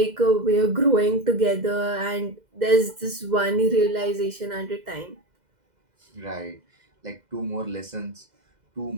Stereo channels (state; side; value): late; left; 2.0 ms